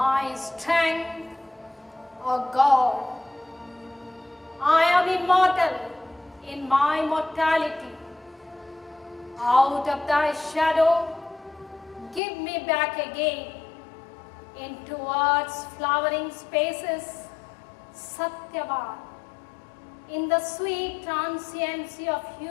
strength a god. I am immortal in my mortality. Out of thy shadow, give me back again into earth's flowering spaces, Satyavan, in the sweet transiency of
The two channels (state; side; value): drops out; right; at 12.2 s